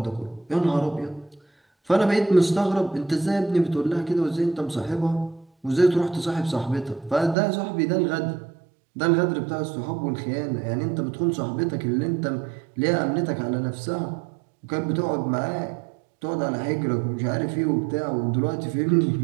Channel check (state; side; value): drops out; left; at 7.4 s